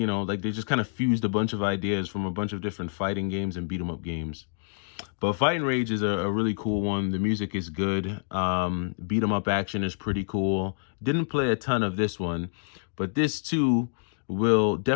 just kind of fused a bunch of ideas from a bunch of different fighting games and beat 'em up games. But Fight and Rage is a really cool one. The music is good. Beat 'em up action is pretty cool. Didn't play a ton of this one, but this too will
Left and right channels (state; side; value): silent; right; digital silence